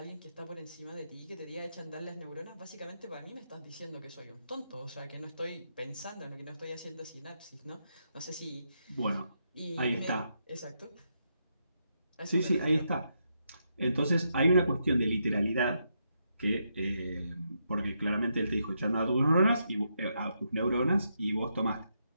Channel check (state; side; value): inverted; both; correlation -0.81